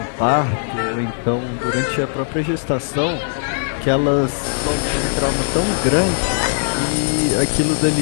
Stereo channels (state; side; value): silent; right; digital silence